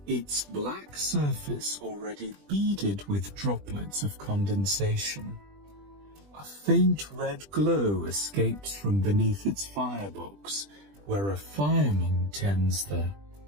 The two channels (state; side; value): late; left; 20 ms